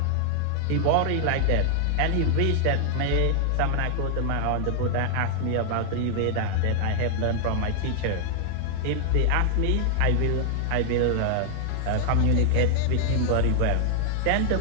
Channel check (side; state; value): both; different; correlation -0.01